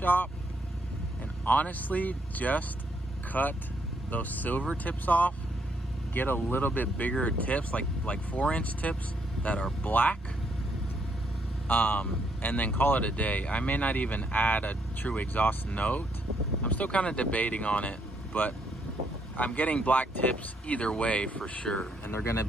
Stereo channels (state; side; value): normal; both; correlation 0.73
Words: and honestly just cut those silver tips off, get a little bit bigger tips, like 4-inch tips that are black, and then call it a day. I may not even add a true exhaust note. I'm still kind of debating on it, but I'm getting black tips either way for sure, and they're gonna